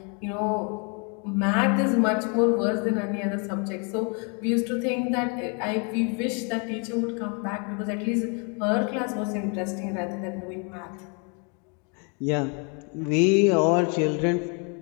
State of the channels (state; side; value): quieter; right; 35.9 dB